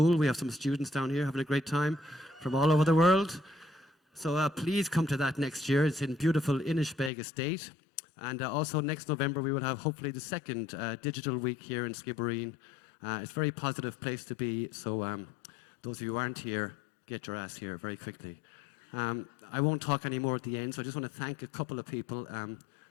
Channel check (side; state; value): right; drops out; at 7.1 s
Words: We have some students down here having a great time from all over the world. So please come to that next year. It's in beautiful Inishbeg Estate. And also next November we will have hopefully the second digital week here in Skibbereen. It's a very positive place to be. So those of you who aren't here, get your ass here very quickly. I won't talk anymore at the end, so I just want to thank a couple of people.